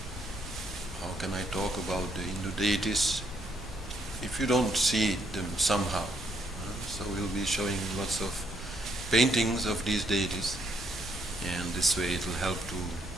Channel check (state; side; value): normal; both; correlation 0.72